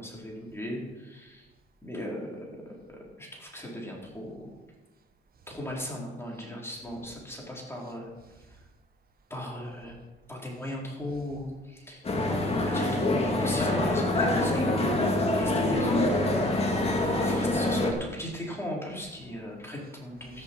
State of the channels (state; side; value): normal; both; correlation 0.54